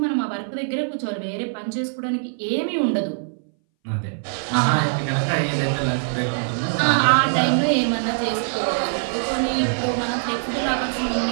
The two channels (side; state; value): left; silent; 61 dB below the other